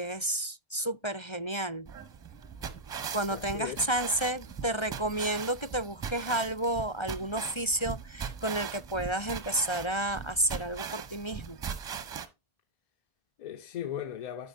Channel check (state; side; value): late; right; 1.3 ms